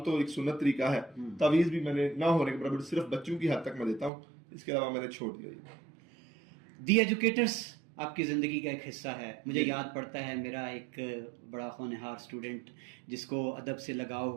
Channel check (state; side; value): drops out; left; at 4.1 s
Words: تو ایک سنت طریقہ ہے، تعویذ بھی میں نے نہ ہونے کے برابر صرف بچوں کی حد تک میں دیتا ہوں، اس کے علاوہ میں نے چھوڑ دیا. دی ایجوکیٹرز آپ کی زندگی کا ایک حصہ ہے. مجھے یاد پڑتا ہے میرا ایک بڑا ہونہار اسٹوڈنٹ جس کو ادب سے لگاؤ